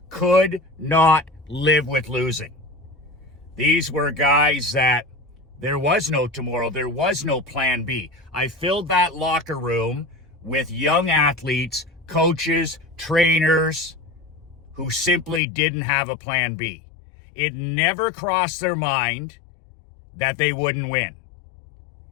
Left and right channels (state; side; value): drops out; right; at 15.4 s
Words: could not live with losing. These were guys that there was no tomorrow. There was no plan B. I filled that locker room with young athletes, coaches, trainers who simply didn't have a plan B. It never crossed their mind that they wouldn't win.